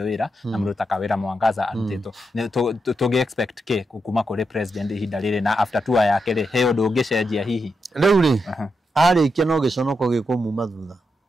wira na mundu takawira Mwangaza arutitwo tugi expect ke kuma kuri president hinda riri na after tour yake ri he undu ungicenjia hihi riu ri arikia no giconoko gikumuma thutha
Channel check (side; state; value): both; normal; correlation 0.85